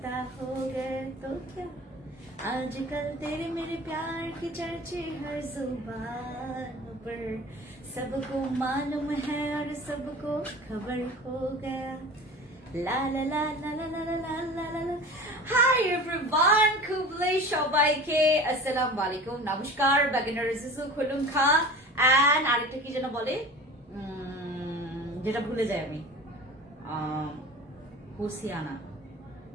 हो गए तो क्या आजकल तेरे मेरे प्यार की चर्चे हर जुबान पर सबको मालूम है और सबको खबर हो गया লা লা লা লা লা লা লা লা লা লা হাই এভরিওয়ান খুবলে সবাইকে আসসালামু আলাইকুম নমস্কার বাগিনার জিসু খুলুম খা এন্ড আরেকটা কি যেন বলে যেটা ভুলে যাই আমি হুসিয়ানা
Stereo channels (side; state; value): both; normal; correlation 0.37